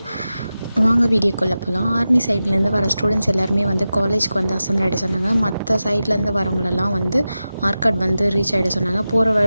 வாங்க வீடியோக்குள்ளே போகலாம். ஆர்மி சைட்லேருந்து வர ஸ்டூடெண்ட்ஸ் எல்லாருமே வந்து காலேஜ்க்கு வந்து அசம்பிள் ஆகிட சொன்னாங்க. மற்ற சைட்லேருந்து வரவங்களெல்லாம் வந்து ஆர்காட் வந்து ரீச் ஆகிட சொன்னாங்க. போகிற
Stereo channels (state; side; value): inverted; both; correlation -0.93